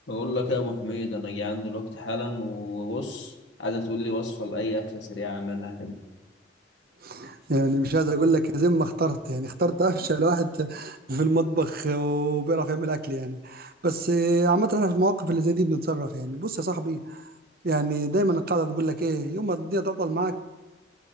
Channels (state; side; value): normal; both; correlation 0.36